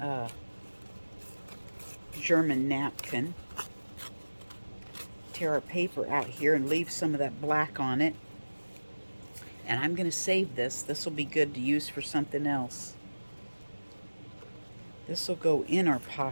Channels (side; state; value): both; inverted; correlation -1.00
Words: German napkin. Tear our paper out here and leave some of that black on it. And I'm going to save this. This will be good to use for something else. This will go in our